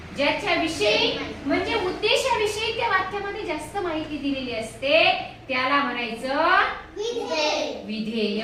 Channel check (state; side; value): identical; both; correlation 1.00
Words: ज्याच्याविषयी म्हणजे उद्देशाविषयी त्या वाक्यामध्ये जास्त माहिती दिलेली असते त्याला म्हणायचं विधेय.